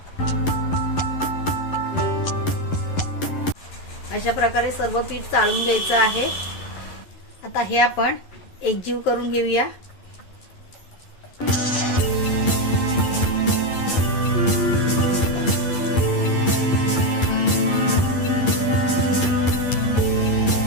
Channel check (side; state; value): right; late; 11 ms